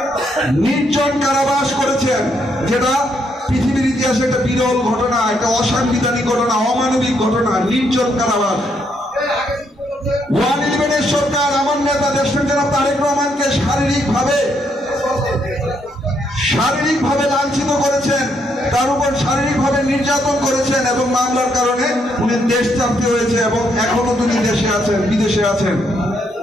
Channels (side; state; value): both; normal; correlation 0.75